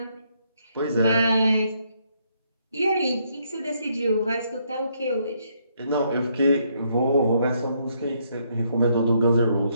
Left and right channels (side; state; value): both; inverted; correlation -0.73